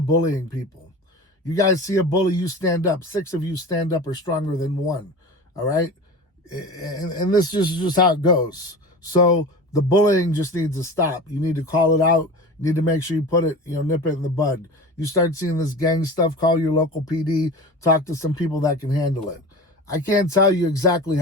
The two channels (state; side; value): normal; both; correlation 0.33